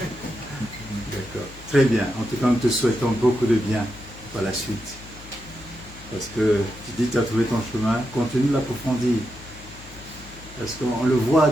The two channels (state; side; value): noise; left; hum, 19 dB below the sound